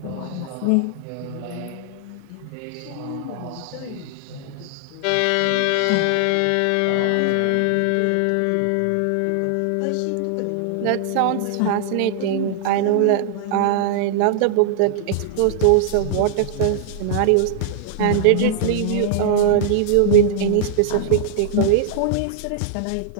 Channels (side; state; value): both; different; correlation -0.01